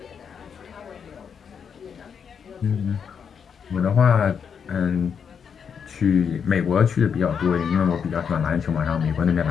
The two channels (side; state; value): right; quieter; 7.0 dB